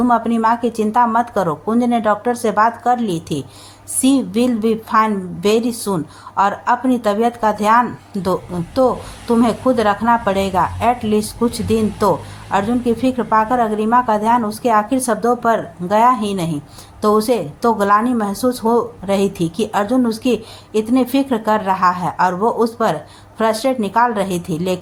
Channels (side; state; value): both; identical; correlation 1.00